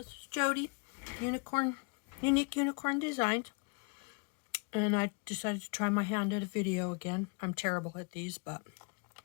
is Jody, Unique Unicorn Designs, and I decided to try my hand at a video again. I'm terrible at these, but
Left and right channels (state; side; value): quieter; right; 34.4 dB